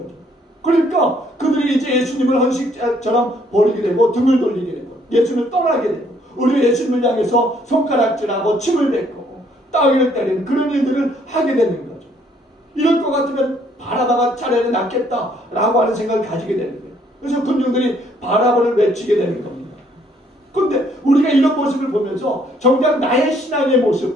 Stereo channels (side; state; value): both; normal; correlation 0.66